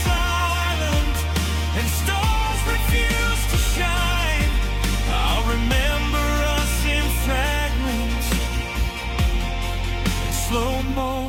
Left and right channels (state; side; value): identical; both; correlation 1.00